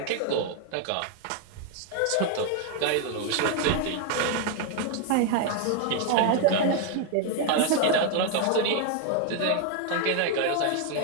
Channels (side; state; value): both; different; correlation 0.00